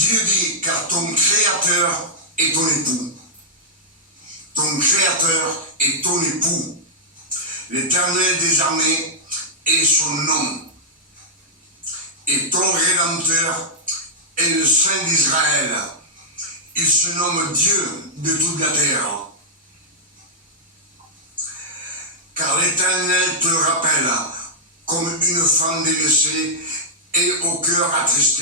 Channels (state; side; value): normal; both; correlation -0.07